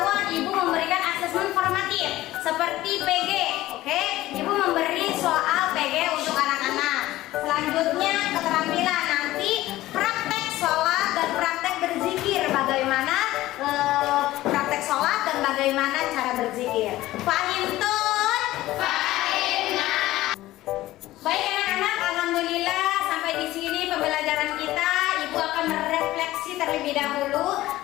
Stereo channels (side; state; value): right; quieter; 16.2 dB